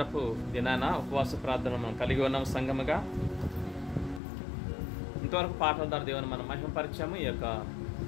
దినాన ఉపవాస ప్రార్థన మనం కలిగి ఉన్నాం సంఘముగా. ఇంతవరకు పాటల ద్వారా దేవుని మనం మహిమపరిచాము. ఈ యొక్క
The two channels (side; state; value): right; drops out; at 4.2 s